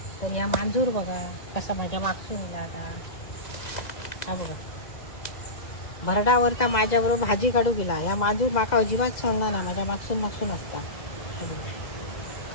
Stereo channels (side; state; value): right; late; 2.0 ms